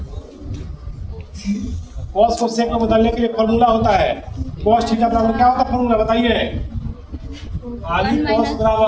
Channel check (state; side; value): identical; both; correlation 1.00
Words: कोस को सेक में बदलने के लिए फॉर्मूला होता है कोस थीटा बराबर क्या होता है फॉर्मूला बताइए? खाली कोस